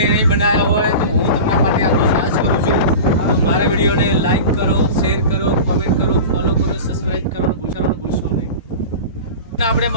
નહીં બનાવ્યા હોય તો હું તમારા માટે આટલો સાહસ કરું છું. તો મારા વિડીયોને લાઈક કરો, શેર કરો, કમેન્ટ કરો, ફોલો કરો, સબસ્ક્રાઇબ કરવાનું ભૂલશો નહીં. આપણે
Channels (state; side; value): inverted; both; correlation -0.31